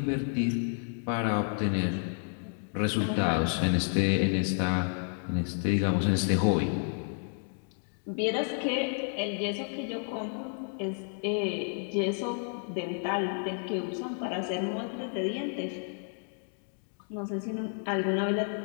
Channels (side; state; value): right; silent; 57 dB below the other